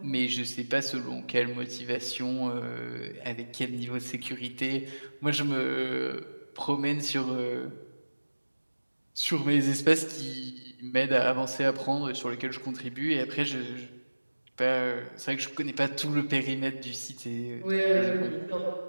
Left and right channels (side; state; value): both; inverted; correlation -1.00